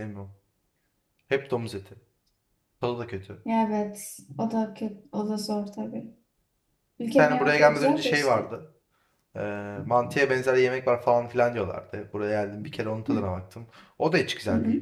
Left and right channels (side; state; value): both; identical; correlation 1.00